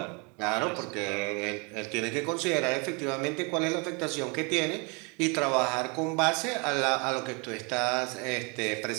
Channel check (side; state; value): left; quieter; 32.0 dB